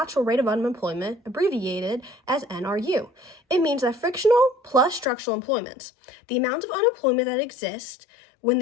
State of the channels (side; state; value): right; drops out; at 5.1 s